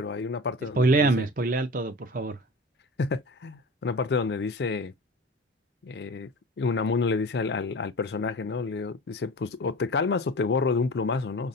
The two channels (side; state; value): both; normal; correlation 0.36